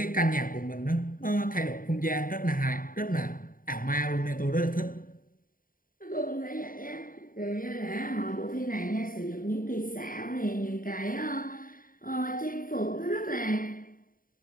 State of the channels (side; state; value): right; late; 0.41 ms